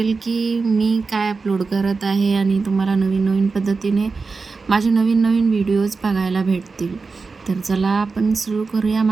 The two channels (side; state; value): left; quieter; 4.4 dB